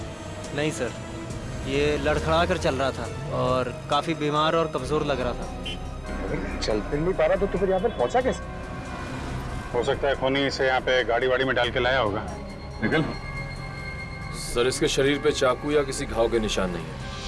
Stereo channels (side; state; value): both; identical; correlation 1.00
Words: नहीं सर, ये लड़खड़ा कर चल रहा था और काफी बीमार और कमजोर लग रहा था। चल फिर नहीं पा रहा तो फिर यहाँ पे पहुंचा कैसे? हो सकता है खूनी इसे यहाँ पे गाड़ी वाड़ी में डाल के लाया होगा। निकल। सर इसके शरीर पे चाकू या किसी घाव के निशान नहीं